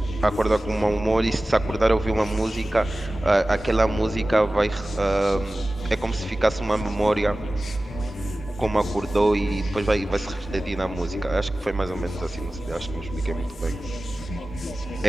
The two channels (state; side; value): normal; both; correlation 0.96